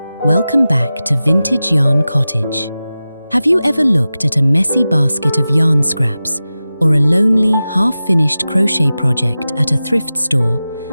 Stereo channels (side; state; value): both; inverted; correlation -0.95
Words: Welcome back to Vintage Yarn Cottage. Have you ever looked at a messy basket of yarn scraps or a lonely, half-finished crochet project at a thrift store